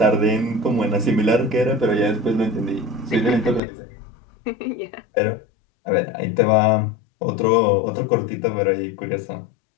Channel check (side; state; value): right; drops out; at 3.6 s